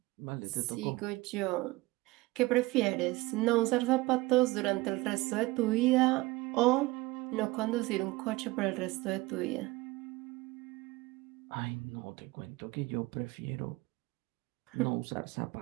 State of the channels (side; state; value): left; quieter; 21.1 dB